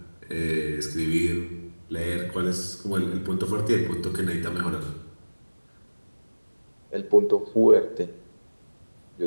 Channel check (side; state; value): both; inverted; correlation -1.00